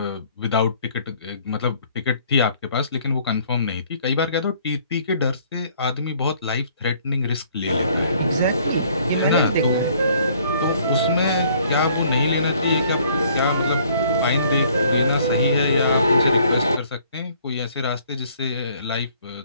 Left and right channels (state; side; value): inverted; both; correlation -0.60